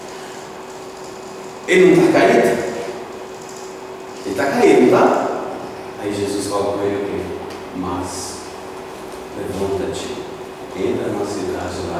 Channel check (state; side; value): identical; both; correlation 1.00